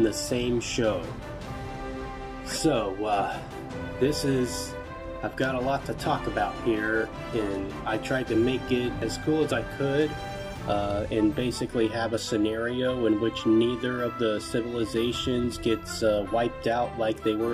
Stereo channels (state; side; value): identical; both; correlation 1.00